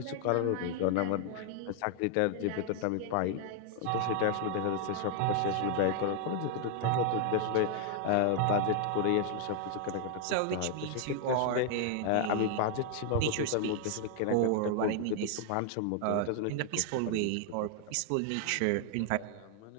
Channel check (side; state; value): both; different; correlation 0.00